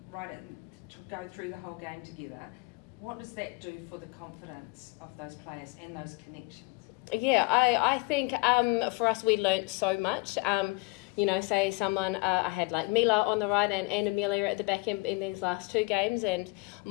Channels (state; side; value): quieter; right; 26.8 dB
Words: to go through the whole game together, what does that do for the confidence of those players and those connections? Yeah, I think for us we learnt so much. You know, say someone, I had like Mila on the right and Amelia at the back in these last 2 games, and